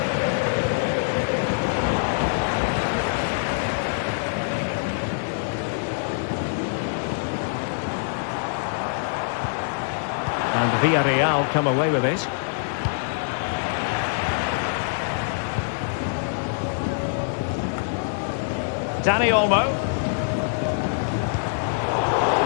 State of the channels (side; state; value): right; silent; digital silence